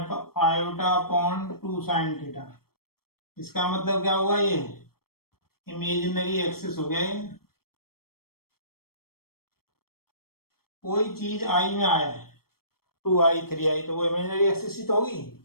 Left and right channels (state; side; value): late; right; 0.94 ms